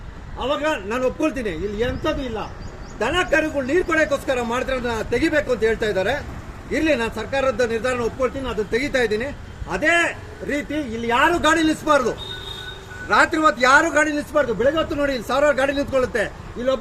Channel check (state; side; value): identical; both; correlation 1.00